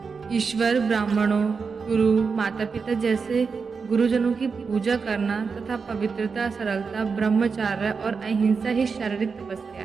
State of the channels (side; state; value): left; quieter; 5.2 dB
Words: ईश्वर, ब्राह्मणों, गुरु, माता पिता जैसे गुरुजनों की पूजा करना तथा पवित्रता, सरलता, ब्रह्मचर्य और अहिंसा ही शारीरिक तपस्या